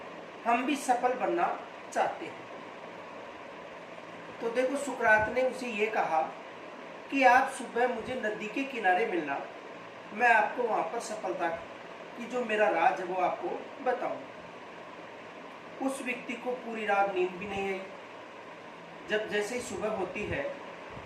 हम भी सफल बनना चाहते हैं। तो देखो, सुकरात ने उसे ये कहा कि आप सुबह मुझे नदी के किनारे मिलना, मैं आपको वहां पर सफलता की जो मेरा राज है वो आपको बताऊंगा। उस व्यक्ति को पूरी रात नींद भी नहीं आई। जब जैसे ही सुबह होती है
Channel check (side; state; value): both; identical; correlation 1.00